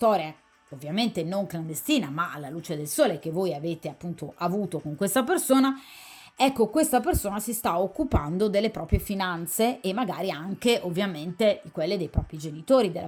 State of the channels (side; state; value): both; identical; correlation 1.00